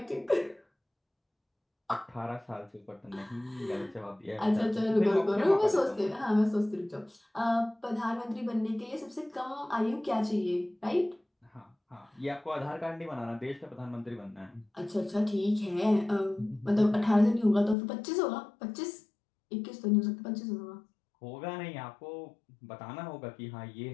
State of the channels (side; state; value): right; drops out; at 17.8 s